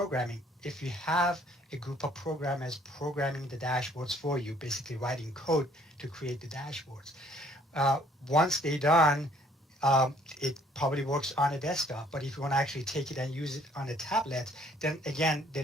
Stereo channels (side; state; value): both; normal; correlation 0.60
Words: If you have a group of programmers programming the dashboards for you, basically writing code to create the dashboards, once they're done, it probably works on a desktop. But if you want to actually take it and use it on a tablet, then again,